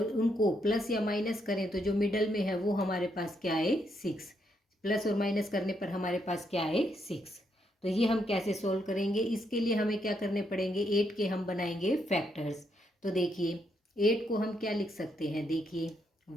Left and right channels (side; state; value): both; normal; correlation 0.77